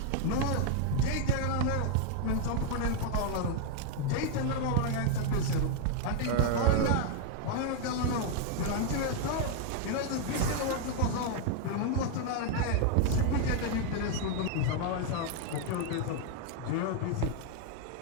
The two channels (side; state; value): both; different; correlation 0.00